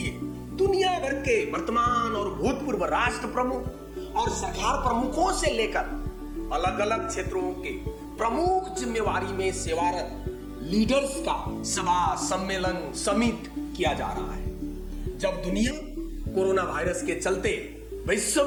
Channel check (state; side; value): identical; both; correlation 1.00